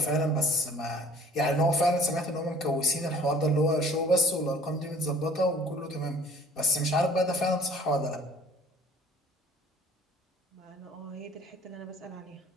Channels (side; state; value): both; normal; correlation 0.52